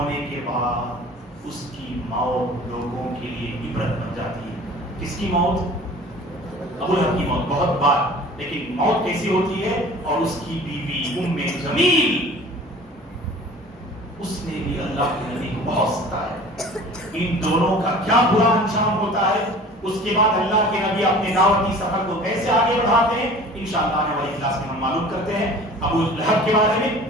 کے بعد اس کی موت لوگوں کے لیے عبرت بن جاتی ہے. کس کی موت؟ ابو لہب کی موت. بہت بار، لیکن موت کیسی ہوتی ہے؟ اور اس کی بیوی ام جمیل، اس نے بھی اللہ کے نبی کو بہت ستایا. ان دونوں کا کیا برا انجام ہوتا ہے. اس کے بعد اللہ کے نبی اپنے دعوتی سفر کو کیسے آگے بڑھاتے ہیں انشاءاللہ آنے والی کلاس میں ہم معلوم کرتے ہیں. ابو لہب کے بارے میں،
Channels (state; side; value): normal; both; correlation 0.44